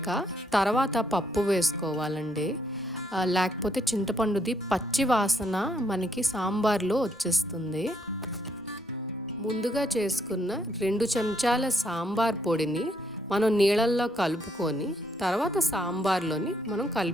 తర్వాత పప్పు వేసుకోవాలండి. లేకపోతే చింతపండుది పచ్చి వాసన మనకి సాంబార్లో వచ్చేస్తుంది. ముందుగా చేసుకున్న 2 చెంచాల సాంబార్ పొడిని మనం నీళ్ళల్లో కలుపుకొని తర్వాత సాంబార్లోని మనం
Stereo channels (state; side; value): normal; both; correlation 0.73